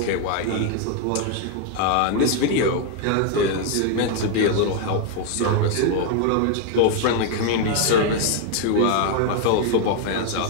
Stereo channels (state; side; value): different; both; correlation 0.00